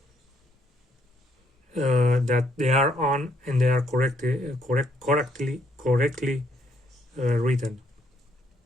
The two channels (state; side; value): normal; both; correlation 0.70